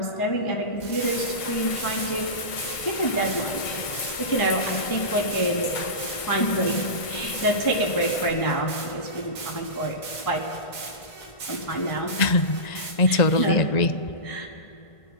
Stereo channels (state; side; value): late; right; 1.5 ms